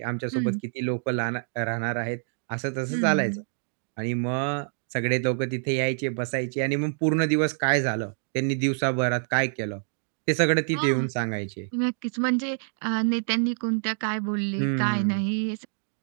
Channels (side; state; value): left; silent; digital silence